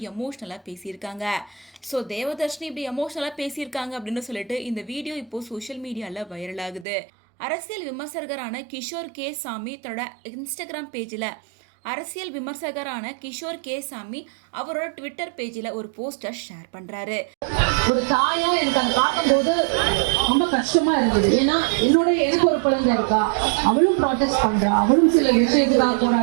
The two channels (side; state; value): left; drops out; at 6.9 s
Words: எமோஷனலா பேசியிருக்காங்க. ஸோ தேவதர்ஷினி இப்படி எமோஷனலா பேசியிருக்காங்க அப்படின்னு சொல்லிட்டு இந்த வீடியோ இப்போ சோஷியல் மீடியால வைரல் ஆகுது. அரசியல் விமர்சகரான கிஷோர் கே சாமி தன்னோட இன்ஸ்டாகிராம் பேஜில் அவரோட ட்விட்டர் பேஜில் ஒரு போஸ்டர் ஷேர் பண்றாரு. ஒரு தாயா எனக்கு அதை பார்க்கும்போது ரொம்ப கஷ்டமா இருந்தது. ஏன்னா எனக்கு ஒரு குழந்தை இருக்கா, அவளும் ப்ராட்டஸ்ட் பண்றா, அவளும் சில விஷயத்துக்காக